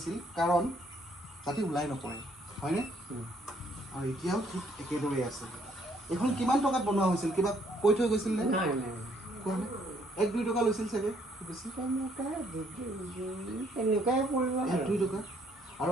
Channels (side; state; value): both; normal; correlation 0.67